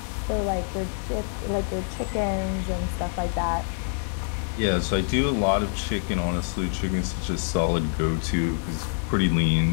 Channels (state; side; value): silent; right; 56 dB below the other